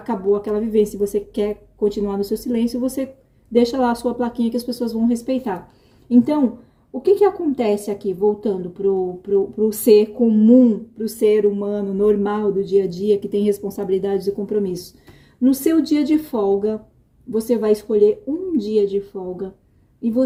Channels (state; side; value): identical; both; correlation 1.00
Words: aquela vivência, você quer continuar no seu silêncio, você deixa lá a sua plaquinha que as pessoas vão respeitar. Então, o que acontece aqui, voltando pro ser comum, pro ser humano normal do dia a dia, que tem responsabilidades e compromissos? No seu dia de folga, você vai escolher um dia de folga e